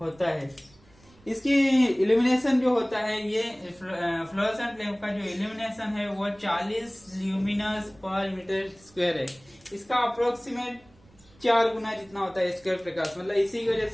होता है। इसकी इल्यूमिनेशन जो होता है ये फ्लोरोसेंट लैंप का जो इल्यूमिनेशन है वो 40 ल्यूमिनस पर मीटर स्क्वायर है। इसका अप्रोक्सीमेट 4 गुना जितना होता है स्क्वायर प्रकाश, मतलब इसी की वजह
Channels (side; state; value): right; noise; rumble, 28 dB below the sound